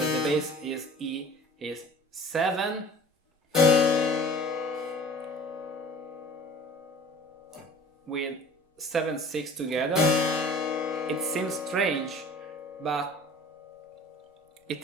the bass is E, is 7 with 7/6 together. It seems strange, but it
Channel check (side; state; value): both; normal; correlation 0.45